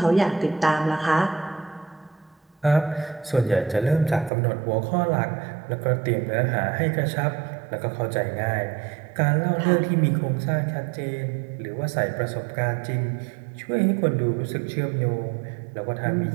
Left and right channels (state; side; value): drops out; left; at 4.3 s